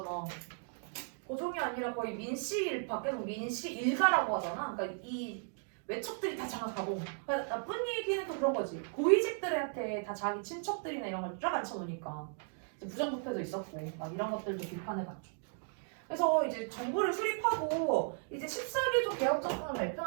고종이 아니라 거의 민씨 밖에서 민씨 일가라고 하잖아. 그러니까 이 외척들이 다 장악하고. 그러니까 나쁜 얘기는 또 그런 거지. 고위직들한테 다 자기 친척들이나 이런 걸 쫙 앉혀놓으니까 부정부패도 있었고 막 이런 것들도 비판을 받죠. 그래서 이제 정부를 수립하고 이제 14개조 개혁정책을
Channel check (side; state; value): left; silent; 54 dB below the other